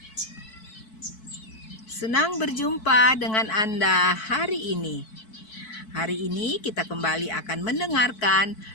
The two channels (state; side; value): late; right; 4.6 ms